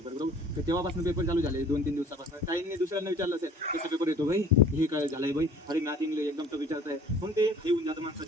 बरोबर, तर तेव्हापासून पेपर चालू झाले 2-3 दिवसापासून, ताईंनी दुसऱ्यांना विचारलं असेल कसा पेपर येतो भाई, हे काय झालंय भाई, अरे मॅथ इंग्लिश एकदम टफ विचारताय, मग ते हे होऊन जातं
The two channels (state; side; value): normal; both; correlation 0.51